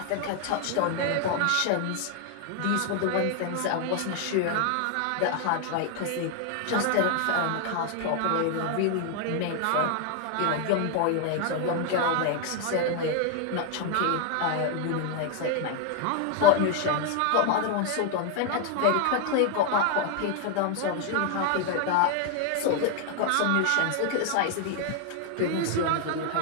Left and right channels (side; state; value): both; different; correlation 0.00